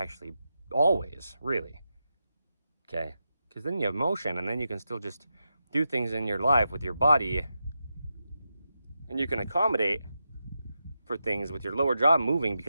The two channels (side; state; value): both; inverted; correlation -0.88